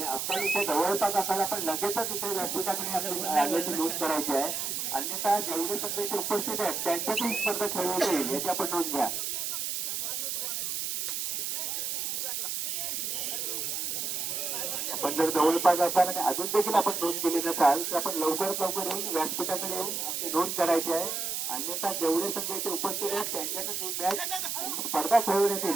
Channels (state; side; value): noise; right; hiss, 2 dB below the sound